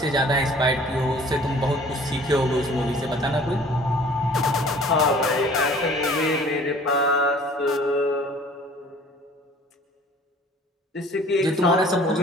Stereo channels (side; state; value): both; normal; correlation 0.51